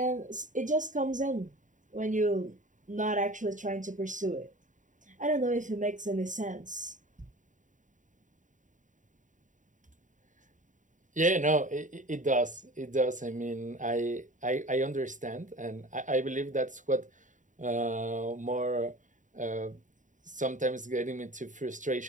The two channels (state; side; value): late; left; 0.37 ms